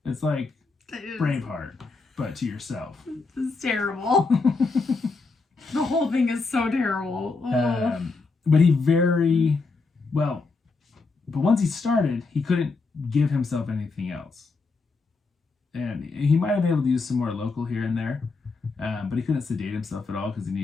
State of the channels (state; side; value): quieter; right; 4.1 dB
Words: It's like Braveheart, but to yourself. This is terrible. The whole thing is so terrible. Oh. But but once he started, he couldn't give himself anything else. And he might have been able to use some more local here and there, but he couldn't sedate himself at all because he